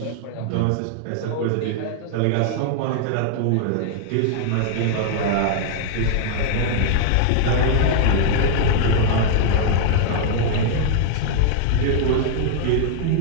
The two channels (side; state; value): both; different; correlation -0.01